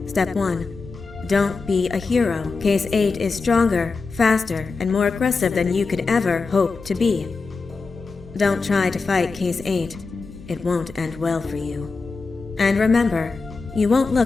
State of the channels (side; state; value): right; quieter; 4.3 dB